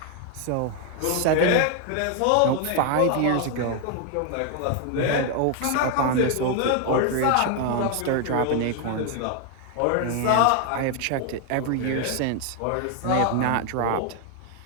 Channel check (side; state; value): both; different; correlation 0.01